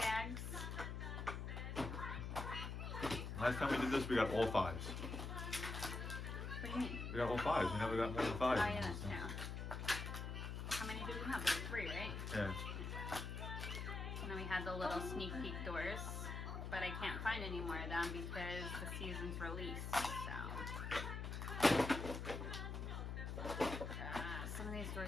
Last time we did this, we got all 5s. What do you mean? We got all 5s. We never got more than 5. Oh yeah, that's true. How many did we have? Like 3, right? Yeah. And then we had the little sneak peek doors, but I can't find any more of them because the season's released. So some of these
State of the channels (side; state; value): left; noise; hum, 4 dB below the sound